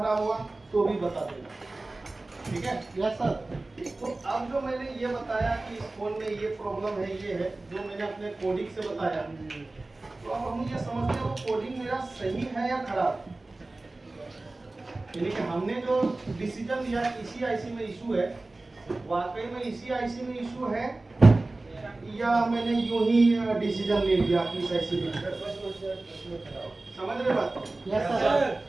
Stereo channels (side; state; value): left; quieter; 3.0 dB